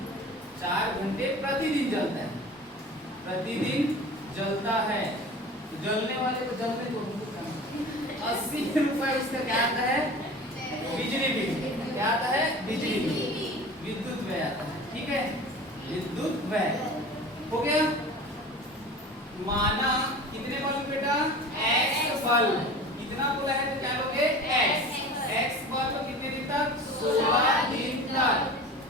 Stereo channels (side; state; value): both; normal; correlation 0.37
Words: 4 घंटे प्रतिदिन जलता है, प्रतिदिन जलता है। तो जलने वाले को जलने दो। 80 रुपए उसका क्या आता है? बिजली बिल। क्या आता है? बिजली बिल। विद्युत व्यय आता है। ठीक है, विद्युत व्यय हो गया। माना कितने बल्ब बेटा? X bulb. कितना बोला है तो क्या लोगे? X बल्ब कितने दिन तक? 16 दिन तक।